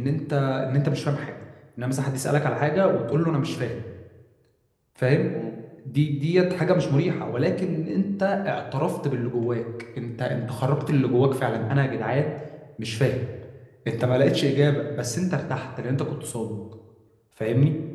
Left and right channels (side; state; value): both; identical; correlation 1.00